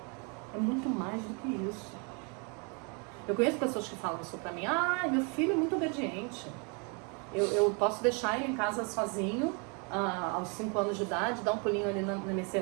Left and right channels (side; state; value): left; quieter; 34.5 dB